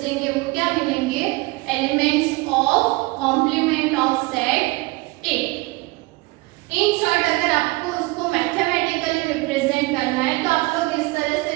वो क्या मिलेंगे? Elements of complement of set A. In short अगर आपको उसको मैथमेटिकली रिप्रेजेंट करना है तो आप लोग इस तरह से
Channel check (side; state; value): left; quieter; 23.2 dB